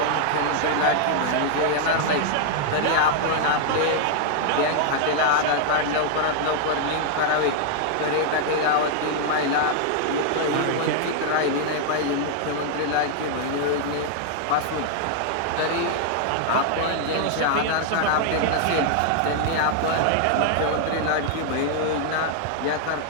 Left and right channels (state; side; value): different; both; correlation -0.01